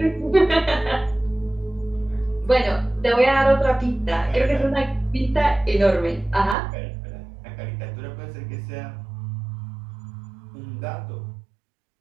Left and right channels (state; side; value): drops out; left; at 6.6 s